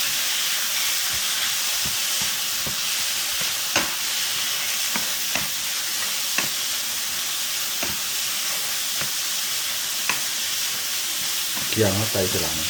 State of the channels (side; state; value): both; identical; correlation 1.00